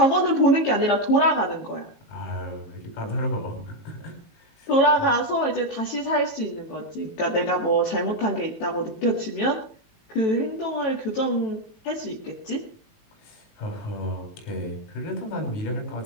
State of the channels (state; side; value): late; right; 18 ms